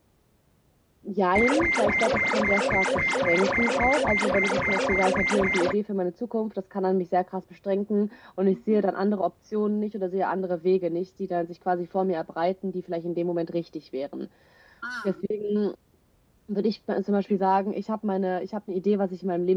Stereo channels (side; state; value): both; identical; correlation 1.00